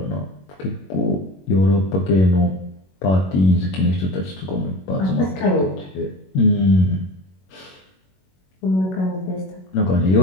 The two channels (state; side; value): late; right; 21 ms